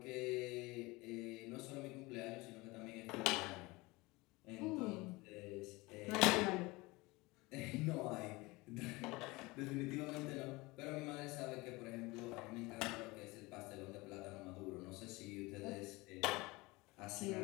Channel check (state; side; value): quieter; right; 22.9 dB